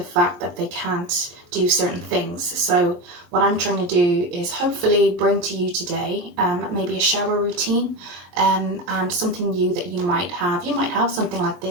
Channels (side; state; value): left; late; 23 ms